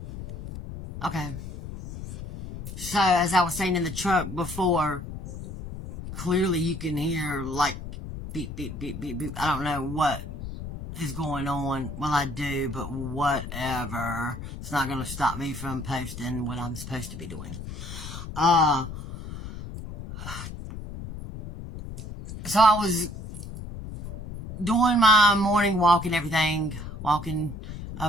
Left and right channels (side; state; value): left; noise; rumble, 10 dB below the sound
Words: Okay. So, as I was saying in the truck before, clearly you can hear like beep, beep, beep, beep, beep. I don't know what is going on. Well, I do, but whatever. It's not going to stop me from posting what I'm supposed to be doing. So I was doing my morning walk and everything, walking